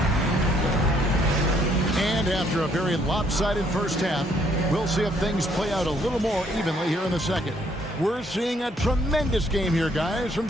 After a very lopsided first half, we'll see if things play out a little more evenly here in the second. We're seeing a tremendous game here, guys, from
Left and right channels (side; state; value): both; normal; correlation 0.67